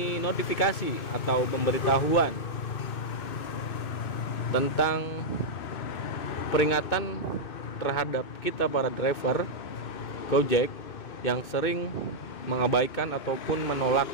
notifikasi atau pemberitahuan tentang peringatan terhadap kita para driver Gojek yang sering mengabaikan ataupun menolak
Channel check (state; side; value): late; right; 2.6 ms